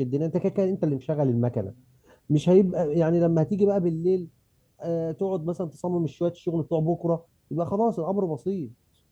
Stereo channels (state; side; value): identical; both; correlation 1.00